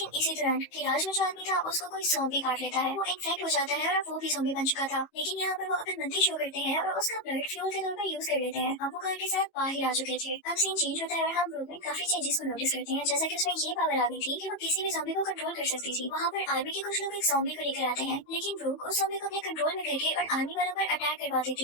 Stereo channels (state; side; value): late; right; 18 ms